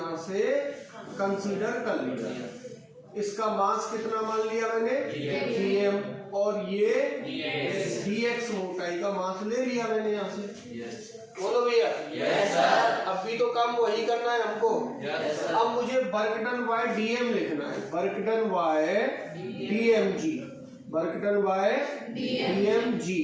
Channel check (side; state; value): both; identical; correlation 1.00